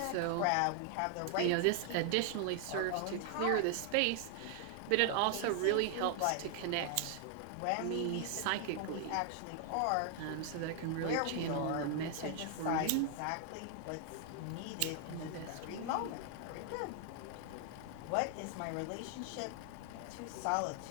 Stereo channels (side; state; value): both; different; correlation 0.00